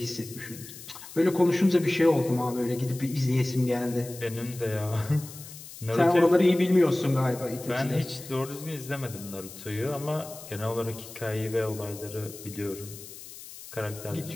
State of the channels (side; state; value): left; noise; hiss, 15 dB below the sound